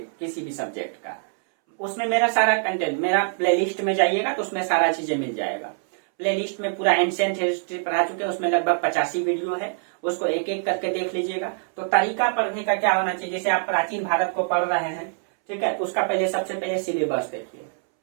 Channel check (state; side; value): silent; left; 62 dB below the other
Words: किसी भी सब्जेक्ट का, उसमें मेरा सारा कंटेंट, मेरा प्लेलिस्ट में जाइएगा तो उसमें सारा चीजें मिल जाएगा। प्लेलिस्ट में पूरा एंशिएंट हिस्ट्री पढ़ा चुके हैं, उसमें लगभग 85 वीडियो है, उसको एक एक करके देख लीजिएगा। तो तरीका पढ़ने का क्या होना चाहिए, जैसे आप प्राचीन भारत को पढ़ रहे हैं, ठीक है, उसका पहले सबसे पहले सिलेबस देखिए,